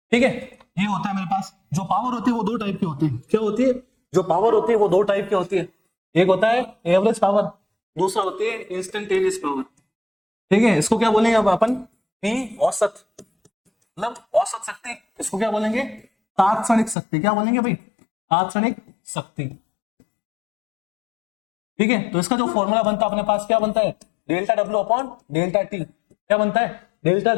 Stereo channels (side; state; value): right; drops out; at 16.9 s